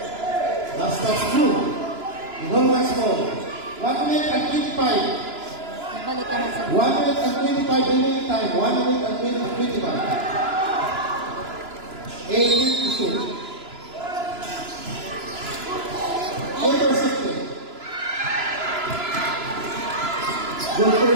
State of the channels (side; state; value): left; late; 2.9 ms